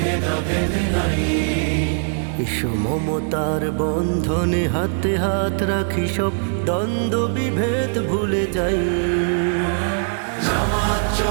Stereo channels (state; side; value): silent; left; digital silence